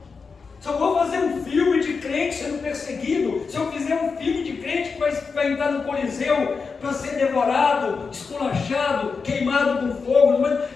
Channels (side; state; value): right; quieter; 5.0 dB